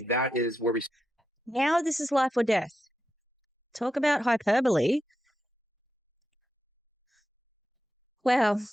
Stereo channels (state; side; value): normal; both; correlation 0.87